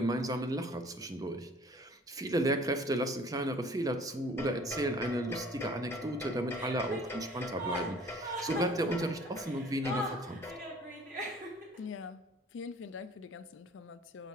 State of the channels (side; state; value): both; normal; correlation 0.52